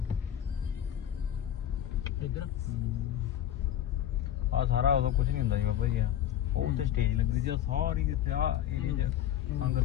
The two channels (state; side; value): quieter; right; 11.0 dB